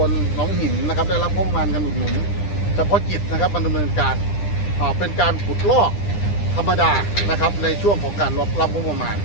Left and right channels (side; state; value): right; late; 9.9 ms